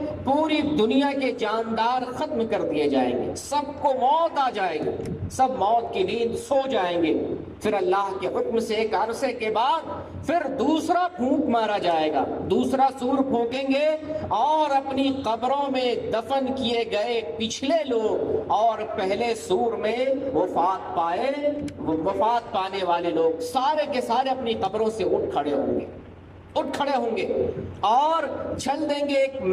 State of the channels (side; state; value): both; identical; correlation 1.00